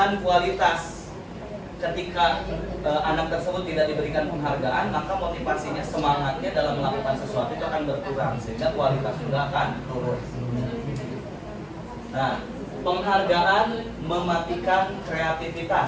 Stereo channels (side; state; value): both; identical; correlation 1.00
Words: kualitas. Ketika anak tersebut tidak diberikan penghargaan, maka motivasinya, semangatnya dalam melakukan sesuatu itu akan berkurang, sehingga kualitas juga akan turun. Nah, penghargaan mematikan